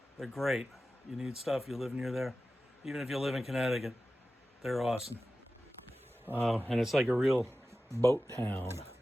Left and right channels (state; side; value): normal; both; correlation 0.95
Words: They're great. You need stuff, you live near there. Even if you live in Connecticut, they're awesome. And it's like a real boat town.